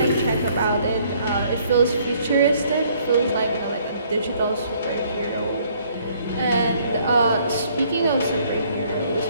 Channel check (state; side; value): inverted; both; correlation -0.63